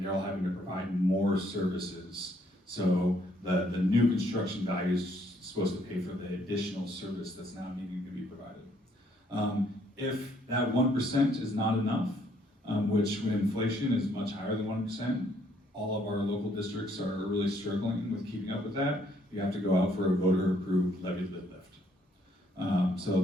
they're all having to provide more services. So the new construction value is supposed to pay for the additional service that's now needing to be provided. If that 1% is not enough, which when inflation is much higher than 1%, all of our local districts are really struggling with keeping up with that. You have to go out for a voter-approved levy lift. So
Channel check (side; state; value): both; normal; correlation 0.67